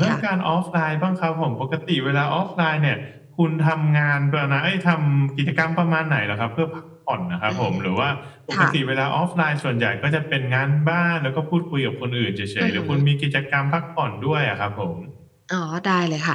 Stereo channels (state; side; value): identical; both; correlation 1.00